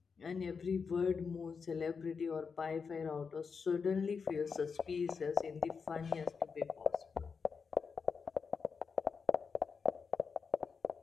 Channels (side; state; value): right; quieter; 5.6 dB